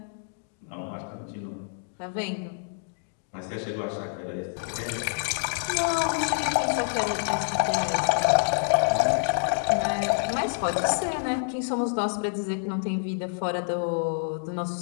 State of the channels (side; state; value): right; silent; digital silence